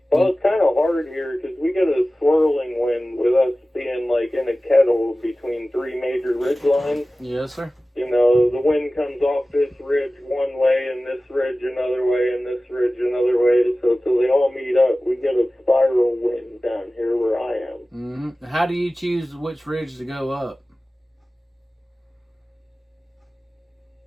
it's kind of hard here because we get a swirling wind with us being like in a kettle between three major ridge lines. Yes, sir. The wind comes off this ridge one way and this ridge another way and this ridge another way. So till they all meet up, we get a spiral wind down here where I am. Mm-hmm. How do you choose which ridge to go up?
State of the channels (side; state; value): both; normal; correlation 0.96